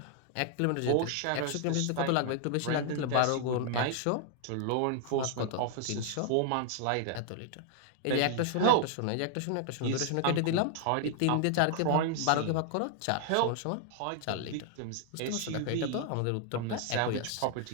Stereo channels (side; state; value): both; different; correlation 0.00